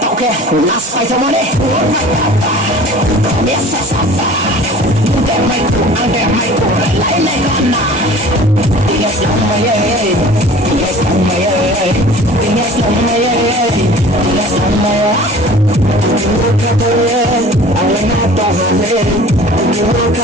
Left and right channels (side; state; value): both; normal; correlation 0.45